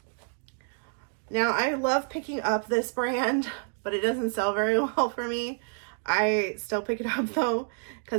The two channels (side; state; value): left; silent; 59 dB below the other